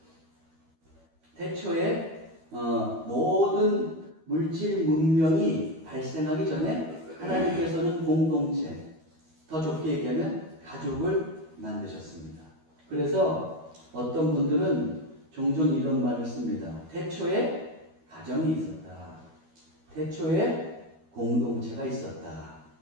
태초에 모든 물질 문명이 발생하기 전에 하나님께서는 공동체, 더 좁게 얘기하면 가족을 만드셨습니다. 그래서 어떤 분들은 종종 이런 말을 씁니다. 태초에 가정이 있었다. 태초에 공동체가 있었다.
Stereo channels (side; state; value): left; late; 12 ms